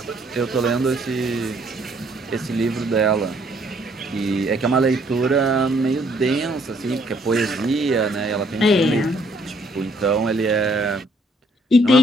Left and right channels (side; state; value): both; normal; correlation 0.66